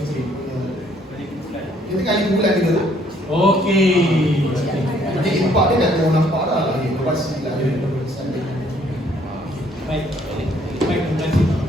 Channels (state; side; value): normal; both; correlation 0.64